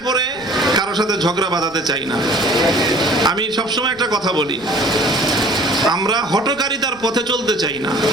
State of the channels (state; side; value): noise; right; rumble, 24 dB below the sound